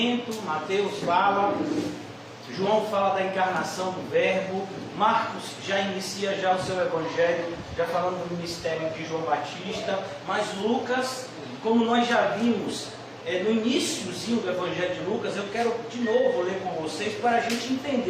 Mateus fala, João fala da encarnação do Verbo, Marcos já inicia o seu evangelho, já falando do ministério de João Batista, mas Lucas, como nós já vimos no iníciozinho do Evangelho de Lucas, eu quero de novo ler com vocês para a gente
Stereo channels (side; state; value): both; identical; correlation 1.00